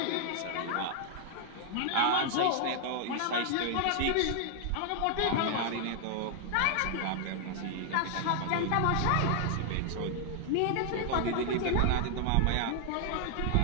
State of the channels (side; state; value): both; different; correlation 0.00